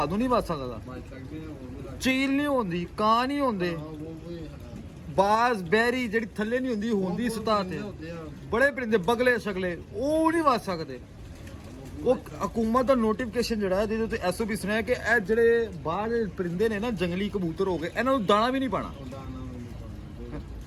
ਨੂੰ ਨਹੀਂ ਵੱਜ ਸਕਦਾ, ਚੀਲ ਨਹੀਂ ਹੁੰਦੀ, ਕਾਂ ਨਹੀਂ ਹੁੰਦੇ, ਬਾਜ਼ ਬਹਿਰੀ ਜਿਹੜੀ ਥੱਲੇ ਨਹੀਂ ਹੁੰਦੀ ਹੁੰਦੀ ਸਤਹ ਤੇ ਬੜੇ ਪਰਿੰਦੇ ਬਗਲੇ ਸ਼ਗਲੇ ਉਹ ਨਹੀਂ ਵੱਜ ਸਕਦੇ। ਉਹ ਹਕੂਮਤ ਦਾ ਨੋਟੀਫਿਕੇਸ਼ਨ ਜਿਹੜਾ ਇਹਦੇ ਉੱਤੇ ਐਸਓਪੀ ਸੁਣਿਆ ਕਿ ਇਹ ਜਿਹੜੇ ਬਾਹਰ ਪਰਿੰਦੇ ਨੇ ਨਾ ਜੰਗਲੀ ਕਬੂਤਰ ਹੋ ਗਏ, ਇਹਨਾਂ ਨੂੰ ਦਾਣਾ ਵੀ ਨਹੀਂ ਪਾਣਾ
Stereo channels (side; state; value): both; identical; correlation 1.00